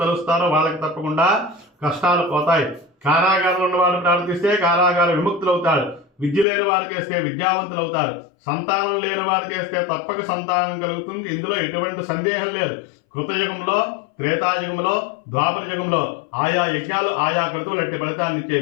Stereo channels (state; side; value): drops out; right; at 6.5 s